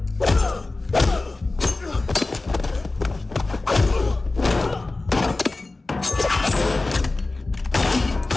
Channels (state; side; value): quieter; right; 3.2 dB